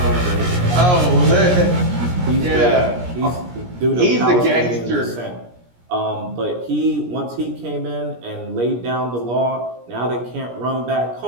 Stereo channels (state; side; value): late; left; 17 ms